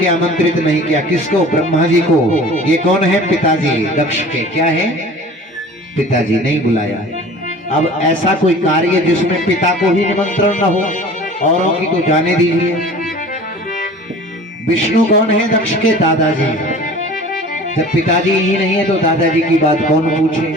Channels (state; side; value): normal; both; correlation 0.43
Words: आमंत्रित नहीं किया। किसको? ब्रह्मा जी को। ये कौन है? पिताजी दक्ष के। क्या है? पिताजी। नहीं बुलाया। अब ऐसा कोई कार्य जिसमें पिता को ही निमंत्रण न हो, औरों की तो जाने दीजिए। विष्णु कौन है? दक्ष के दादाजी। जब पिताजी ही नहीं है तो दादाजी की बात कौन पूछे?